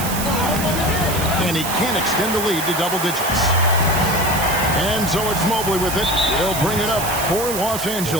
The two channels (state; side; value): noise; right; hiss, 6 dB below the sound